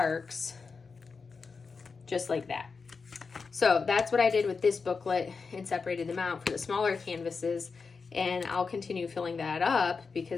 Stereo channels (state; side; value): quieter; right; 4.9 dB